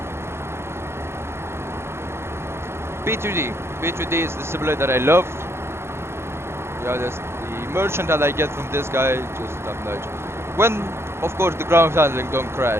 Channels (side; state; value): left; late; 0.12 ms